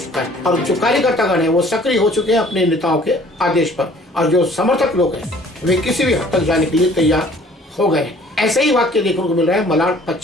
है और जो कार्यकर्तागण है वो सक्रिय हो चुके हैं अपने नेताओं के आदेश पर और जो समर्थक लोग हैं वे किसी भी हद तक जाने के लिए तैयार हो गए हैं। ऐसे ही वाक्य देखने को मिल रहा है मलाड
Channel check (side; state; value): both; normal; correlation 0.54